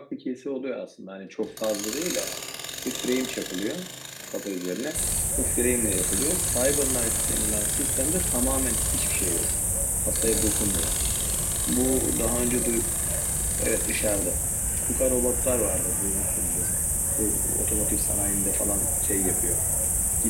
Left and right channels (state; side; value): identical; both; correlation 1.00